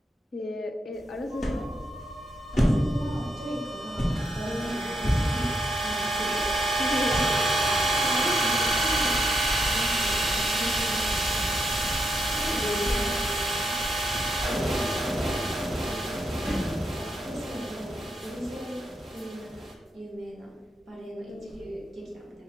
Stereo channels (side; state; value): both; normal; correlation 0.81